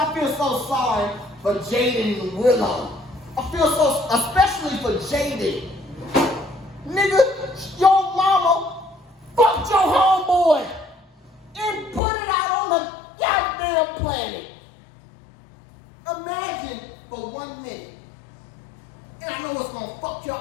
feel so sorry for Jaden and Willow. I feel so, especially for Jaden. Nigga, your mama fucked your homeboy and put it out on the goddamn planet. Imagine for 1 minute, and I know it's gonna fuck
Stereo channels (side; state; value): right; drops out; at 12.0 s